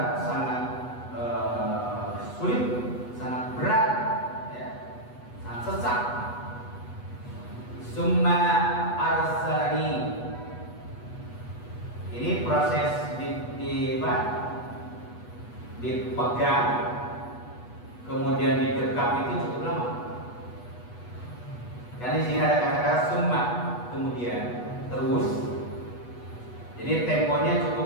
sangat sulit, sangat berat, ya, sangat sesak. Summa arsalani. Ini proses dipegang, kemudian didekap itu cukup lama. Karena di sini ada kata-kata summa, kemudian terus. Jadi temponya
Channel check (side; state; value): right; late; 8.2 ms